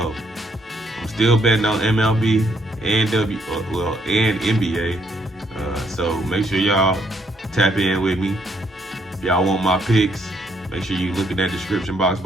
I'm still betting on MLB and NBA, so make sure y'all tap in with me. If y'all want my picks, make sure you look in that description box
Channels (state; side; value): normal; both; correlation 0.71